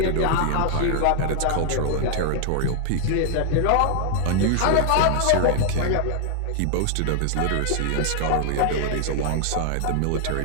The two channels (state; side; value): different; both; correlation 0.00